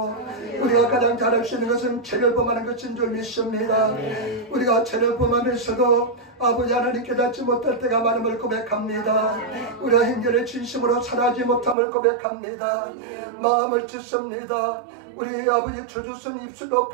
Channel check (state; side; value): drops out; left; at 11.8 s